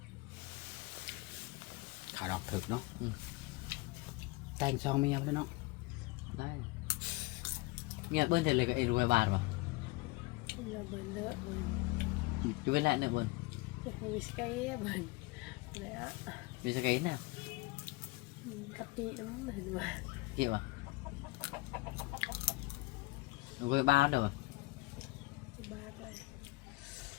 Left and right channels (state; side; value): quieter; right; 23.6 dB